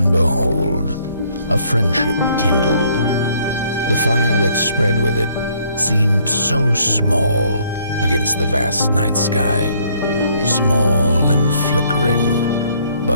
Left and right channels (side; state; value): both; inverted; correlation -0.65